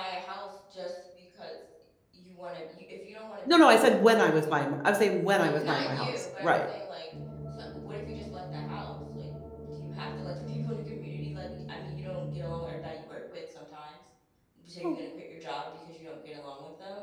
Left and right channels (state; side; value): identical; both; correlation 1.00